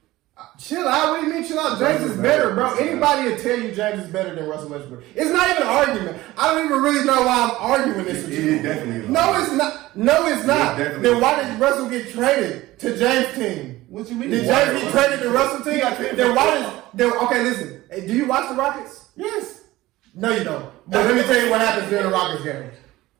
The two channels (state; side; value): quieter; left; 17.6 dB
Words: Chill out? What do you mean chill out? James is better, bro. Anybody will tell you James is better than Russell Westbrook. It's not even an argument. I don't even really know why I'm arguing this with you. It definitely is. No, it's not. No, it's not. Then why did Russell get traded to James' team? What you mean? Did James get traded to Russell team? Then why okay, listen. Hey, do you watch the Rockets? Yes. No, you don't. But let me tell you what happens during the Rockets game.